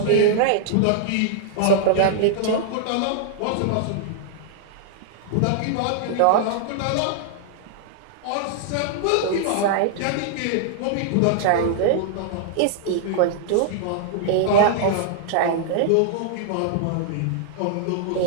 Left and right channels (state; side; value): different; both; correlation -0.01